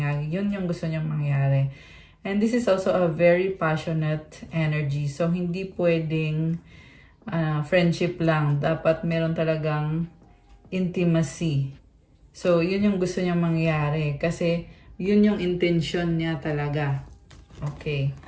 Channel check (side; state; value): both; identical; correlation 1.00